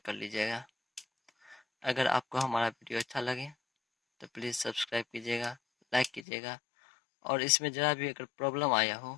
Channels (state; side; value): drops out; right; at 6.2 s